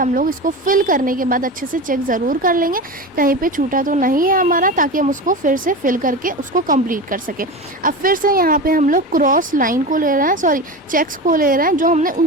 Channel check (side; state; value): both; normal; correlation 0.25